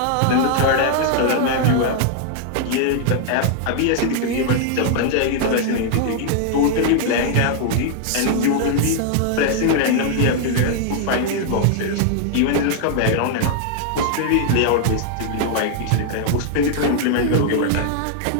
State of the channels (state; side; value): different; both; correlation 0.00